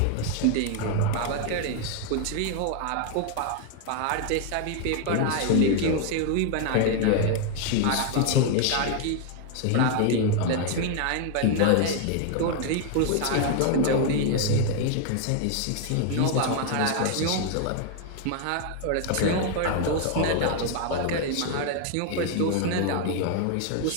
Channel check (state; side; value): different; both; correlation 0.00